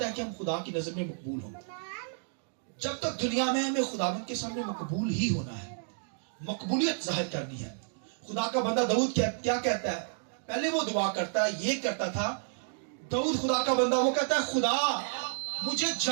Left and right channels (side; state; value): left; silent; digital silence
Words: है कि हम खुदा की नजर में मकबूल हो। जब तक दुनिया में हमें खुदावंद के सामने मकबूल ही होना है, मकबूलियत जाहिर करनी है। खुदा का बंदा दाऊद क्या कहता है, पहले वो दुआ करता है, ये करता था दाऊद खुदा का बंदा, वो कहता है खुदा मुझे